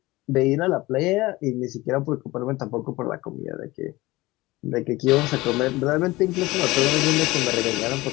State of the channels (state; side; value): quieter; right; 20.0 dB